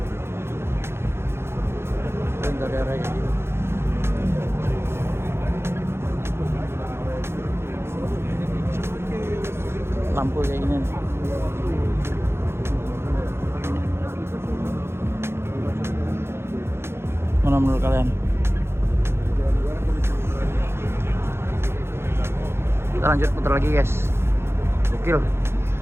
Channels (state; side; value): late; left; 0.12 ms